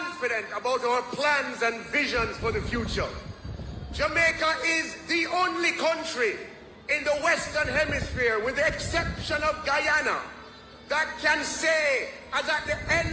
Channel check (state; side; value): identical; both; correlation 1.00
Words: about our plans and visions for the future. Jamaica is the only country in the Western Hemisphere, with the exception of Guyana, that can say, as at the